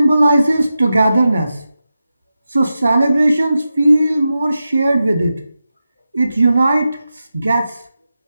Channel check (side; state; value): both; inverted; correlation -0.91